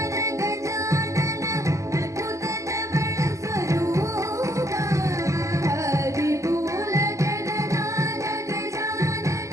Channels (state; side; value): late; left; 0.15 ms